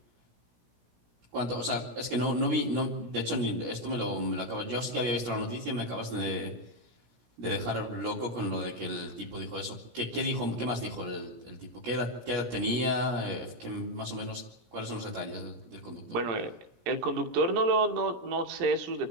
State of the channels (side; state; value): left; late; 17 ms